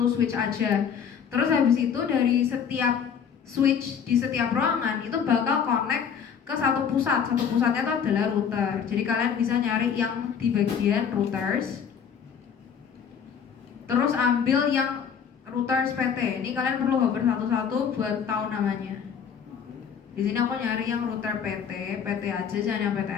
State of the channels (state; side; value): quieter; right; 7.3 dB